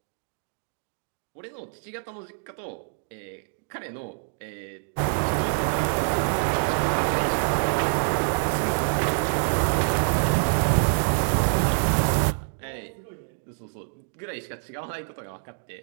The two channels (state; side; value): silent; left; digital silence